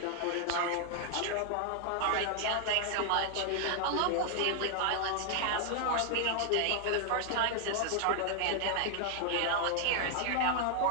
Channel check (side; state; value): both; different; correlation 0.00